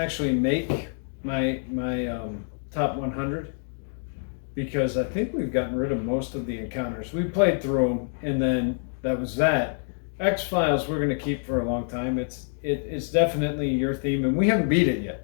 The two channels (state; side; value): silent; right; digital silence